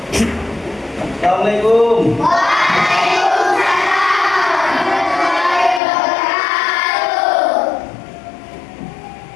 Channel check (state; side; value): drops out; right; at 5.8 s